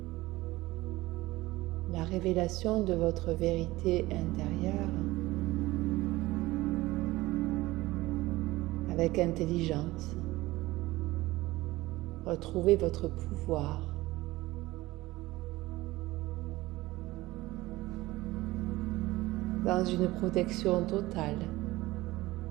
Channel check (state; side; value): quieter; left; 18.8 dB